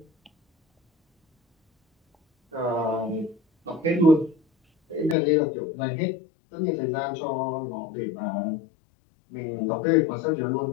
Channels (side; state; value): right; drops out; at 5.2 s